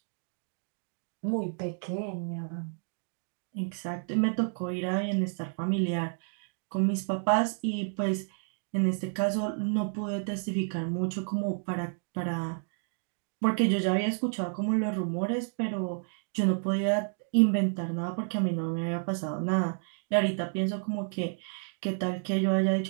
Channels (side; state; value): left; silent; digital silence